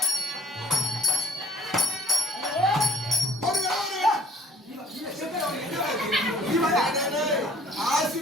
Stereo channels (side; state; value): both; normal; correlation 0.56